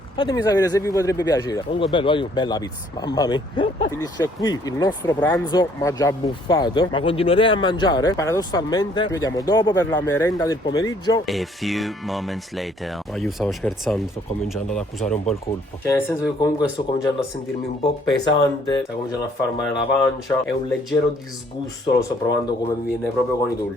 Fatemi sapere se vi potrebbe piacere. Comunque bello, bella pizza, mamma mia. Finisce qui il nostro pranzo, ma già buffato. Ma continuerei a mangiare. Paradossalmente ci vediamo dopo per la merenda del pomeriggio. A few moments later. Ma io stavo scherzando, sto cominciando ad accusare un po' il colpo. Cioè nel senso che comunque sto cominciando a sentirmi un po' pesante, sta cominciando a far male la pancia. È un leggero disgusto, lo sto provando come mi viene proprio con i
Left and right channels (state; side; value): normal; both; correlation 0.62